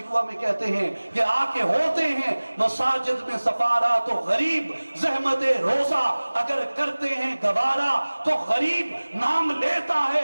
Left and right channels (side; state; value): both; inverted; correlation -1.00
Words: में कहते हैं कि आके होते हैं मसाजिद में सफारा तो गरीब, ज़हमते रोजा अगर करते हैं गवारा तो गरीब, नाम लेता है